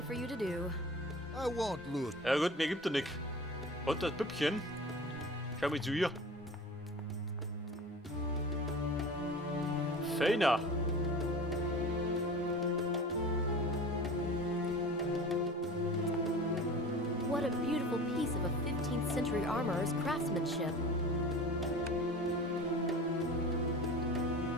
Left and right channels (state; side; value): normal; both; correlation 0.38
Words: for you to do. I won't lose. Ja gut, mir gibt er nix. Und das Püppchen. Schau mal zu ihr. Feiner. What a beautiful piece of a 15th century armorer's craftsmanship.